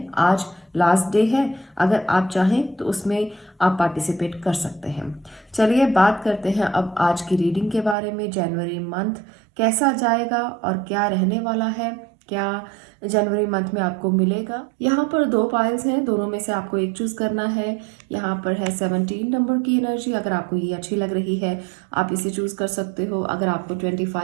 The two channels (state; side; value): drops out; left; at 8.0 s